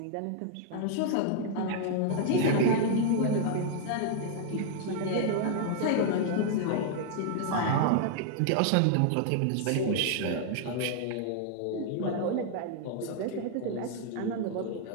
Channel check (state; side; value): different; both; correlation 0.00